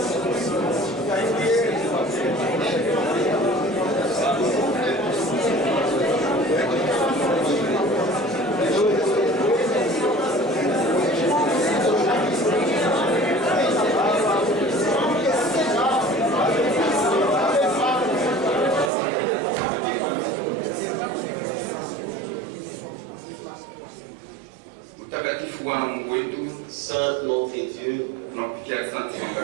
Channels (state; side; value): drops out; left; at 18.9 s